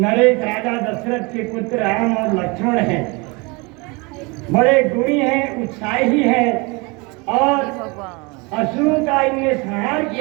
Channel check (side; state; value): left; quieter; 28.0 dB